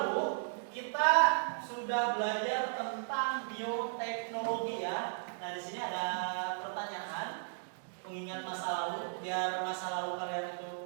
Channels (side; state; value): left; silent; digital silence